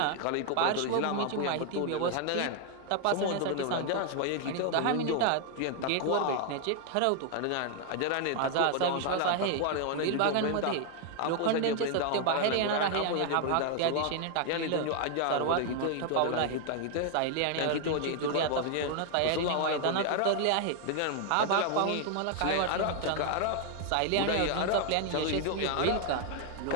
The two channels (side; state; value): both; different; correlation 0.00